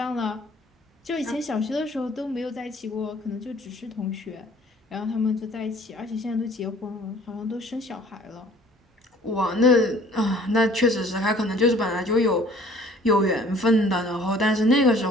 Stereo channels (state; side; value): normal; both; correlation 0.53